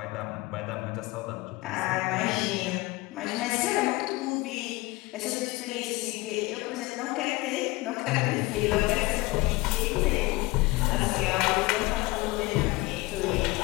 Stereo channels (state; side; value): quieter; right; 21.9 dB